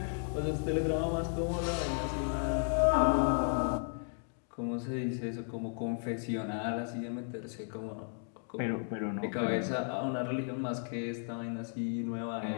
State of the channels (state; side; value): silent; right; 55 dB below the other